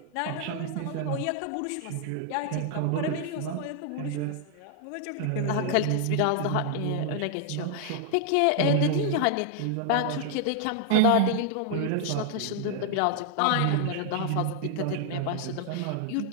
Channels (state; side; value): different; both; correlation 0.00